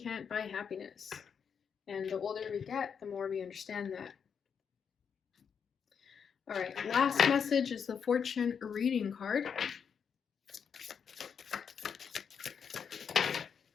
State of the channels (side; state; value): right; quieter; 6.9 dB